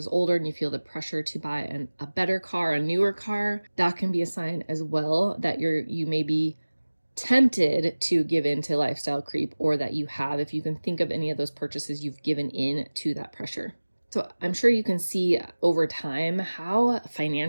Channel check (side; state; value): both; inverted; correlation -1.00